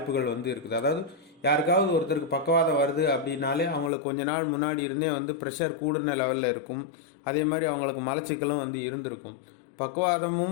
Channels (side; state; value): right; drops out; at 3.9 s